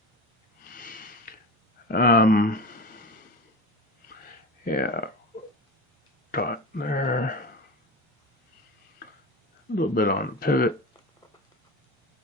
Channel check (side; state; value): both; normal; correlation 0.27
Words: Yeah, dot there. A little bit on the pivot.